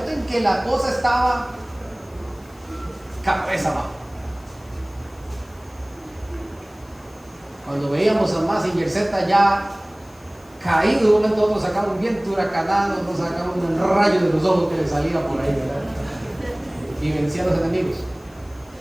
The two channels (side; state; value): left; noise; hiss, 29 dB below the sound